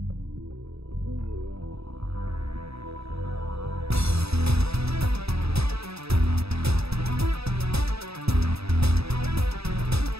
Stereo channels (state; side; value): late; left; 0.78 ms